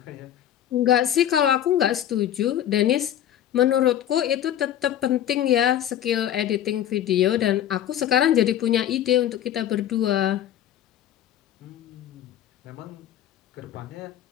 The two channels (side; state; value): right; quieter; 11.0 dB